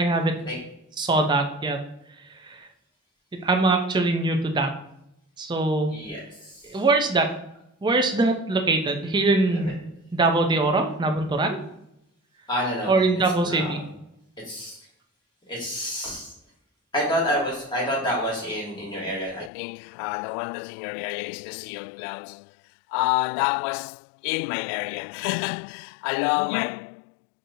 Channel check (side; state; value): right; drops out; at 19.5 s